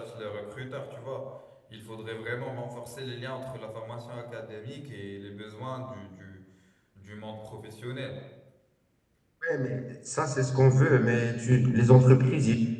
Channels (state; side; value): identical; both; correlation 1.00